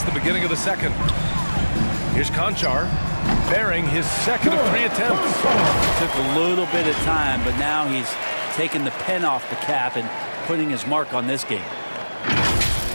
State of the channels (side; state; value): both; inverted; correlation -1.00